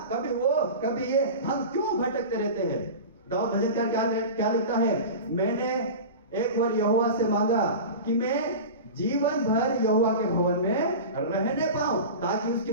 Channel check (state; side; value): inverted; both; correlation -0.30